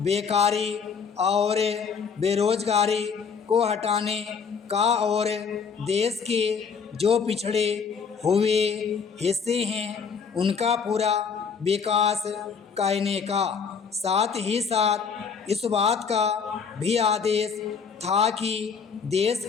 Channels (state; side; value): quieter; right; 6.0 dB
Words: और बेरोजगारी को हटाने का और देश के जो पिछड़े हुए हिस्से हैं उनका पूरा विकास करने का। साथ ही साथ इस बात का भी आदेश था कि देश